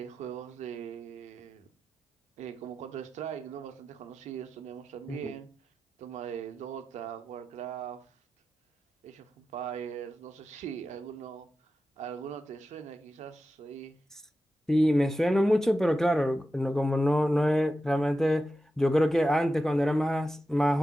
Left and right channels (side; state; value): both; normal; correlation 0.92